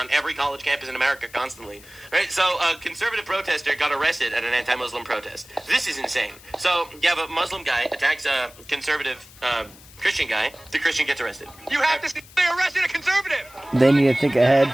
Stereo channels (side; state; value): left; noise; hiss, 22 dB below the sound